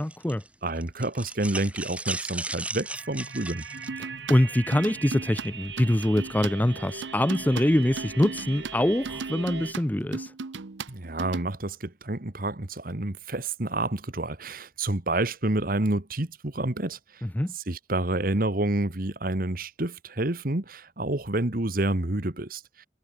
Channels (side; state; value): both; normal; correlation 0.72